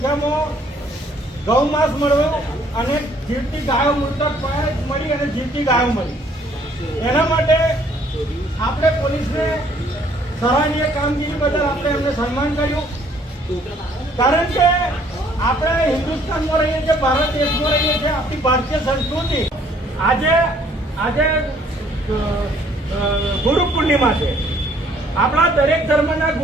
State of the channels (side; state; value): both; normal; correlation 0.62